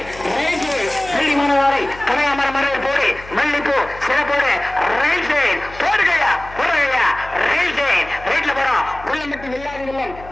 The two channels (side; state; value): left; noise; hum, 18 dB below the sound